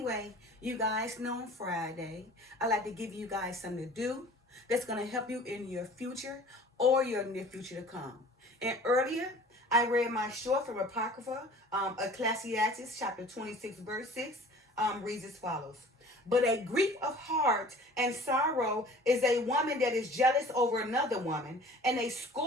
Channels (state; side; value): normal; both; correlation 0.46